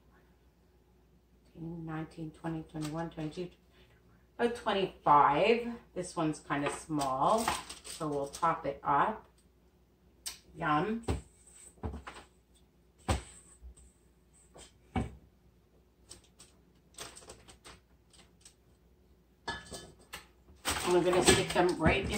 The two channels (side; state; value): both; identical; correlation 1.00